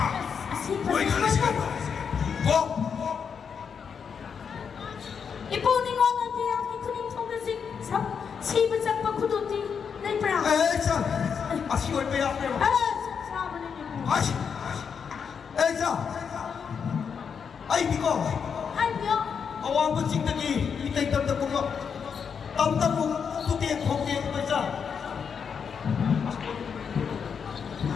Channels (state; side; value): quieter; right; 6.6 dB